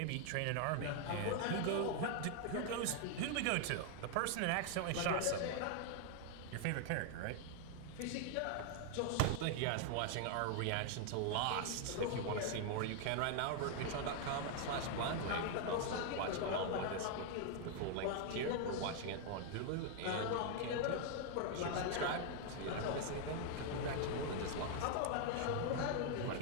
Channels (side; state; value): both; different; correlation 0.00